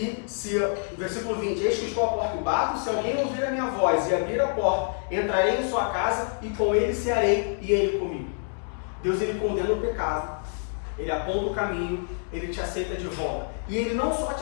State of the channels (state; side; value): silent; right; 60 dB below the other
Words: se, versículo 20, eis que estou à porta e bato, se alguém ouvir a minha voz e abrir a porta, entrarei em sua casa e com ele cearei e ele comigo. Deus, Ele condena o pecado, Ele aponta o caminho, Ele te aceita de volta. E Ele não só te